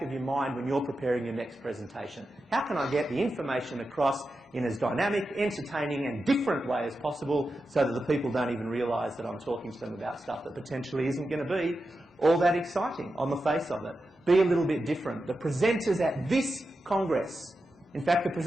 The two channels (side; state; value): both; normal; correlation 0.90